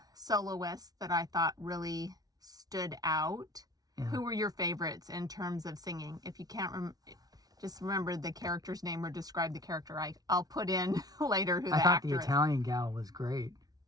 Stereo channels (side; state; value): left; late; 0.18 ms